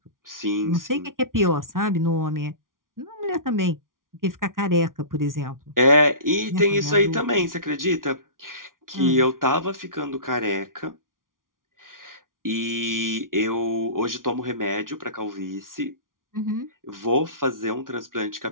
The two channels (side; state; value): left; late; 0.90 ms